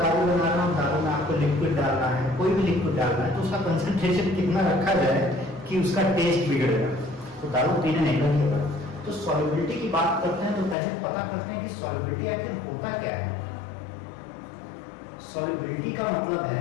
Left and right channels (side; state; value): right; drops out; at 10.8 s